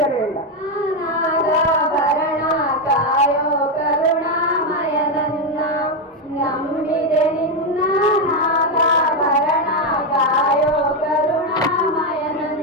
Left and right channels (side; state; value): both; normal; correlation 0.06